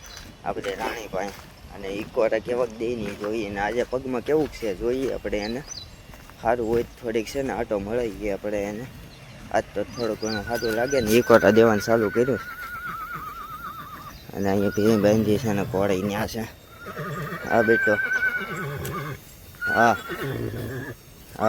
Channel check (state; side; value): identical; both; correlation 1.00